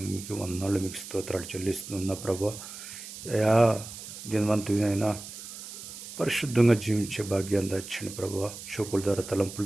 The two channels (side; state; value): right; noise; hiss, 12 dB below the sound